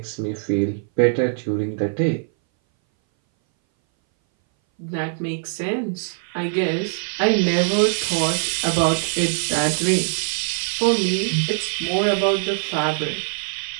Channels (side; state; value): left; silent; 60 dB below the other